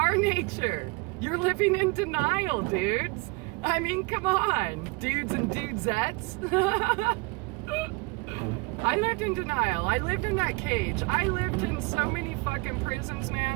nature. You're living in denial, dudes. I mean, come on, dudes and dudesettes. I lived in denial. I lived in that cage. I lived in so many fucking prisons,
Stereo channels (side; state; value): left; quieter; 27.7 dB